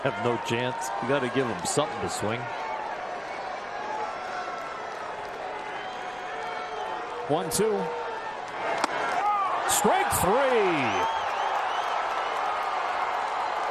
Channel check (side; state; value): left; noise; rumble, 27 dB below the sound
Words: have no chance. You got to give them something to swing. 1-2. Strike 3.